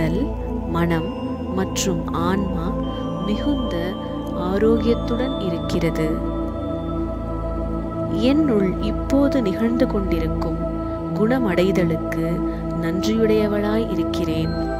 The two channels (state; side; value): identical; both; correlation 1.00